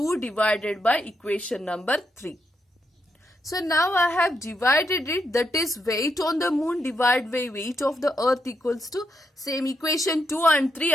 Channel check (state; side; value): normal; both; correlation 0.81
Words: divided by equation number 3. So now I have divided it, that is weight on the moon divided by weight of the earth equals to same equation 2 and 3